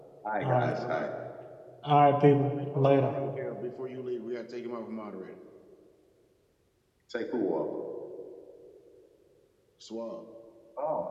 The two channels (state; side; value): identical; both; correlation 1.00